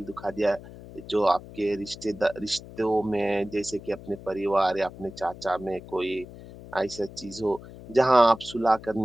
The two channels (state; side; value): noise; left; hum, 16 dB below the sound